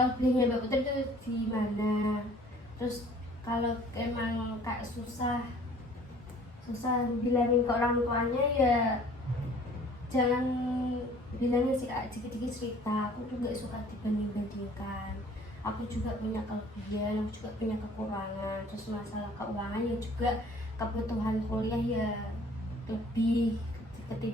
Mbak Putri itu di mana. Terus kalau emang kayak susah bilangin ke orang tuanya ya jangan bilangin sih kak, dikit-dikit cerita, aku tuh gak suka dibanding-bandingkan, aku juga punya kelebihan, aku juga punya kekurangan. Terus masalah keuangan ya juga, kebutuhan kuliah ya lebih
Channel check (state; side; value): normal; both; correlation 0.53